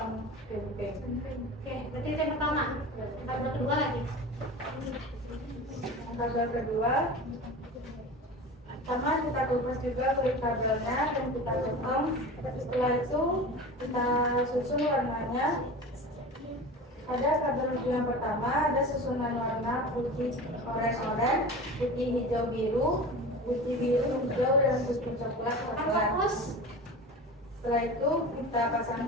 crimping. Oke, berarti itu yang pertama. Kabel kedua lagi. Kabel kedua, pertama kita kupas juga kulit kabelnya dan kita potong. Setelah itu kita susun warnanya. Pada kabel ujung yang pertama ada susunan warna putih oranye, putih hijau biru, putih biru hijau, dan putih coklat. Fokus. Setelah itu kita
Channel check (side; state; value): both; normal; correlation 0.33